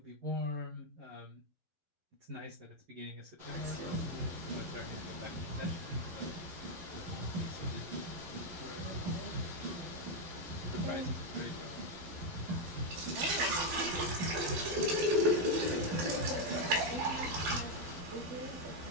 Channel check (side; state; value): left; late; 12 ms